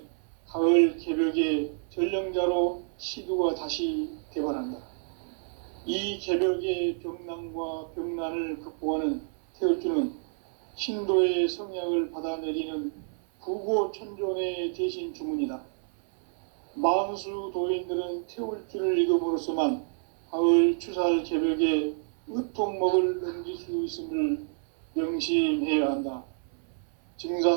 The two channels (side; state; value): left; silent; 59 dB below the other